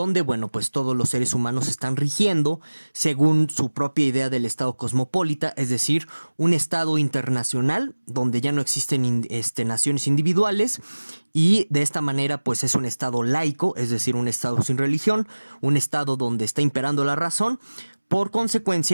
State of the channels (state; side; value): inverted; both; correlation -1.00